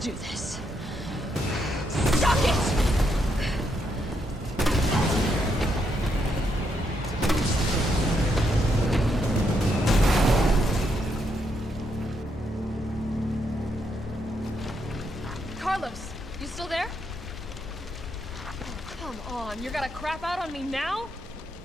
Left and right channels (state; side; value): normal; both; correlation 0.78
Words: this. Suck it! Carlos, you still there? Oh, come on, you're gonna crap out on me now?